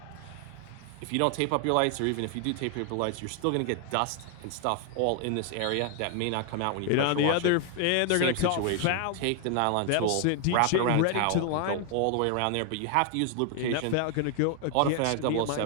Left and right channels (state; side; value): different; both; correlation 0.00